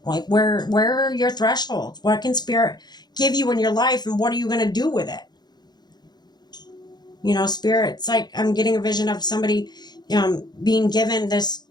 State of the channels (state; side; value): late; right; 0.20 ms